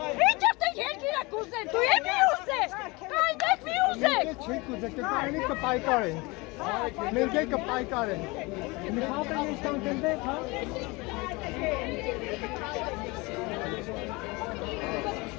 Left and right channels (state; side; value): quieter; right; 25.0 dB